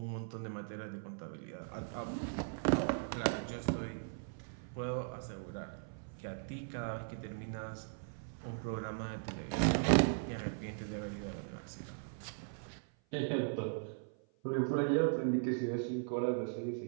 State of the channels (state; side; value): silent; left; 52 dB below the other